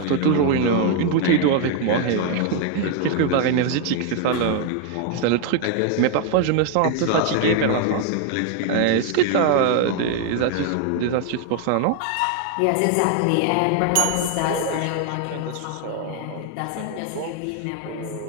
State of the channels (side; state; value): both; different; correlation 0.00